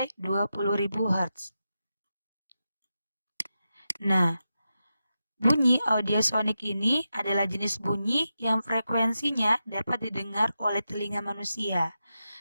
20.000 Hz. Nah, bunyi audiosonik ini adalah jenis bunyi yang frekuensinya dapat didengar oleh telinga manusia,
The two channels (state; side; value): inverted; both; correlation -0.89